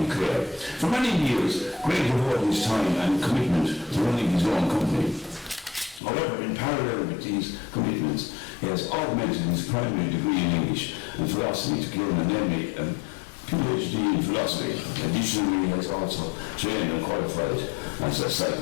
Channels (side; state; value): right; drops out; at 6.0 s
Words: Clare. For many years, Greg devoted his time and commitment to running his own company. However, in parallel with these commitments, he has augmented his primary degree in English and philosophy to gain an MA and PhD in philosophy. Additionally, he has also trained and qualified as a